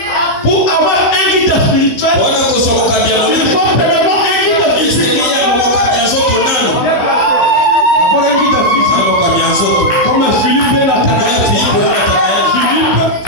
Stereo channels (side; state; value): right; late; 16 ms